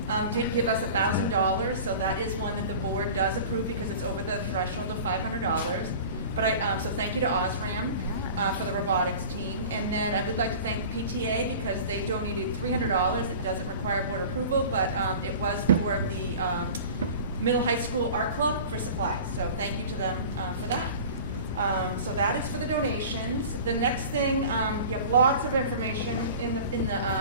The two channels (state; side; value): inverted; both; correlation -0.40